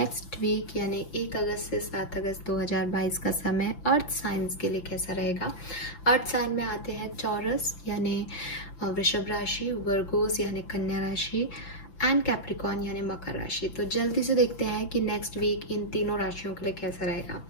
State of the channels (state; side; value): late; right; 5.9 ms